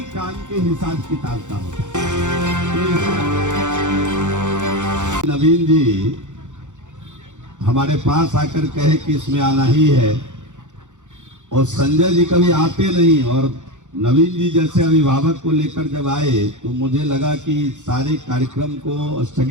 काम के हिसाब किताब का होता है। नवीन जी हमारे पास आकर कहे कि इसमें आना ही है और संजय जी कभी आते नहीं, और नवीन जी जैसे अभिभावक को लेकर जब आए तो मुझे लगा कि सारे कार्यक्रम को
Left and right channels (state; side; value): late; left; 0.85 ms